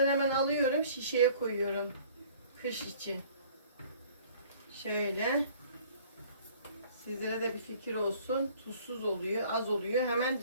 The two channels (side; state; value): both; inverted; correlation -0.53